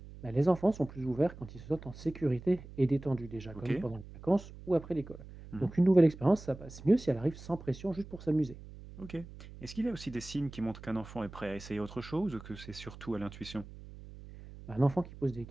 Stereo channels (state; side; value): noise; right; hum, 16 dB below the sound